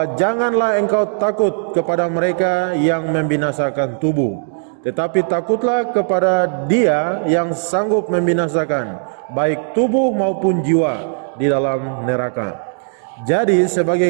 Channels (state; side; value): silent; left; digital silence